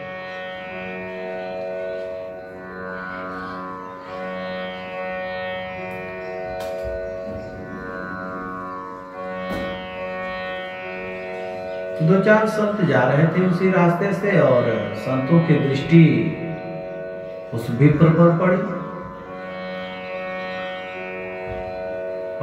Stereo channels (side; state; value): both; identical; correlation 1.00